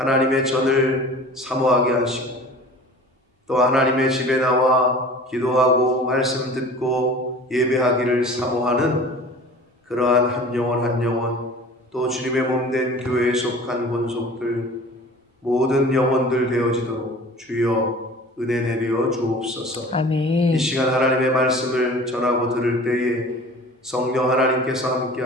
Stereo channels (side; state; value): both; normal; correlation 0.42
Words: 전을 사모하게 하시고 또 하나님의 집에 나와 기도하고 말씀 듣고 예배하기를 사모하는 그러한 한 영혼 한 영혼 또 주님의 몸된 교회에 속한 권속들 모든 영혼들 되어지도록 주여 은혜 내려 주옵소서. 아멘. 이 시간 하나님의 말씀을 전하고 들을 때에 성령 하나님께서 함께